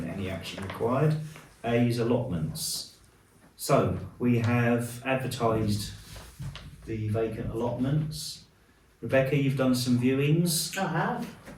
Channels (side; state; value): both; identical; correlation 1.00